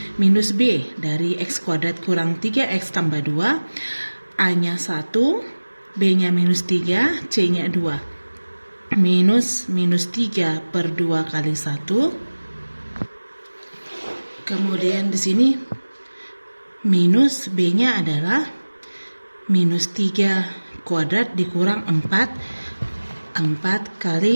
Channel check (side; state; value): both; inverted; correlation -1.00